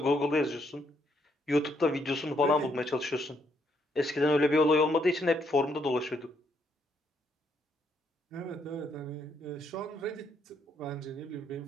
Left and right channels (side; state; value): both; normal; correlation 0.73